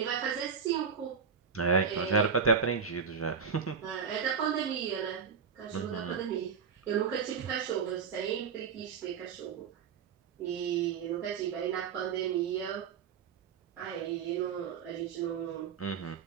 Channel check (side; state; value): left; quieter; 6.4 dB